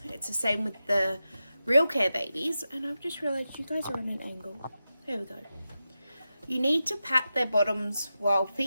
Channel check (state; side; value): inverted; both; correlation -0.91